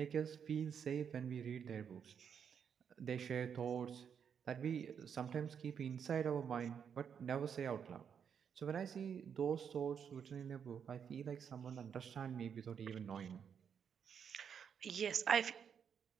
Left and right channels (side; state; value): left; quieter; 7.5 dB